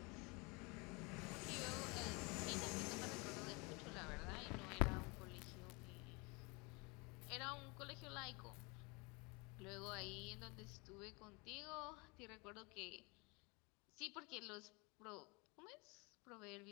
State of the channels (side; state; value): right; quieter; 28.4 dB